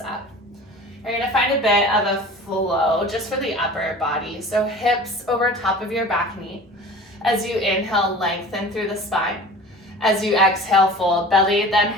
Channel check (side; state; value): both; normal; correlation 0.40